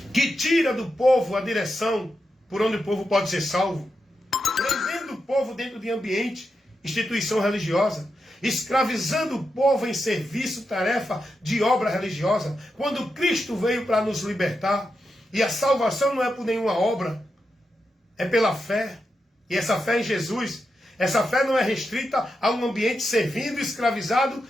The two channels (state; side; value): normal; both; correlation 0.87